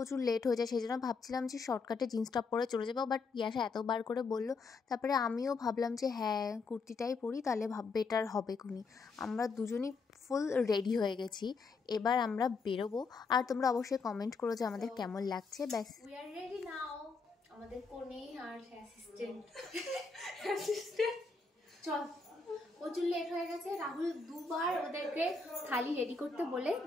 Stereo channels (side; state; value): right; quieter; 4.3 dB